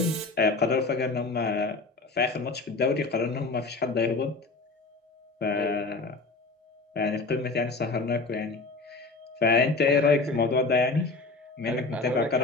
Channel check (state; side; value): quieter; right; 3.7 dB